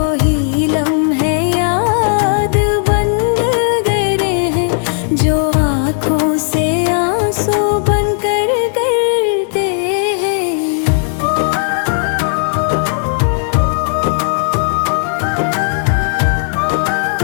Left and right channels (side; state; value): right; silent; digital silence